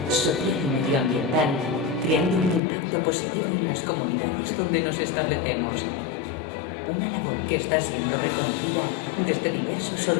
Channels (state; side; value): drops out; right; at 2.6 s